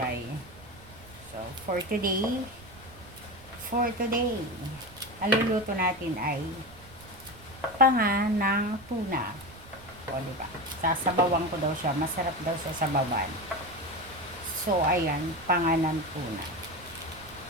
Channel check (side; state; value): right; noise; rumble, 20 dB below the sound